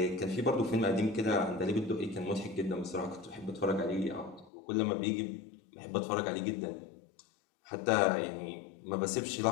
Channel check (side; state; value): right; drops out; at 4.5 s